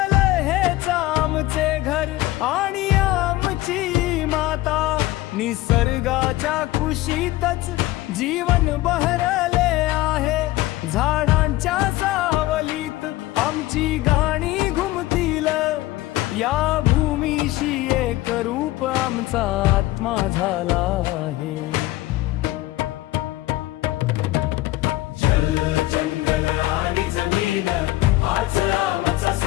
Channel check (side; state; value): right; quieter; 17.4 dB